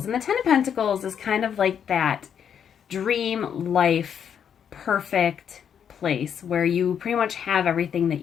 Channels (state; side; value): quieter; right; 8.2 dB